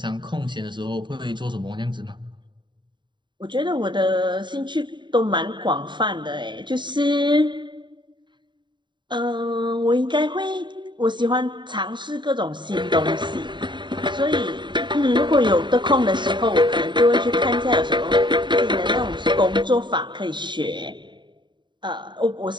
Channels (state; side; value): late; left; 0.23 ms